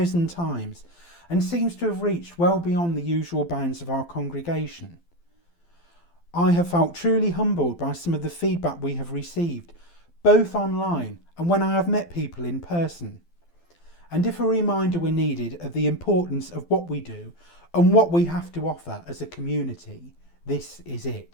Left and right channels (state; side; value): late; right; 12 ms